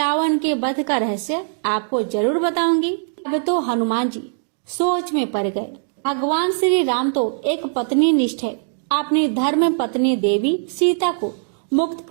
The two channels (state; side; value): silent; left; digital silence